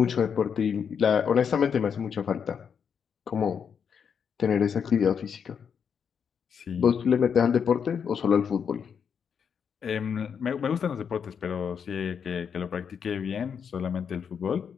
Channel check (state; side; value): quieter; right; 7.1 dB